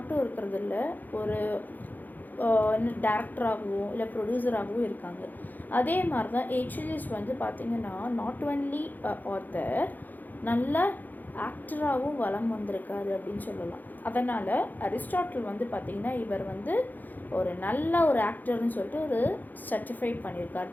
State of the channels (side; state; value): right; late; 0.085 ms